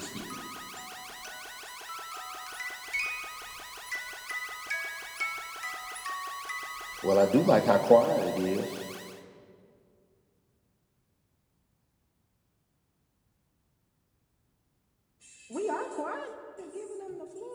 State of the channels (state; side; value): identical; both; correlation 1.00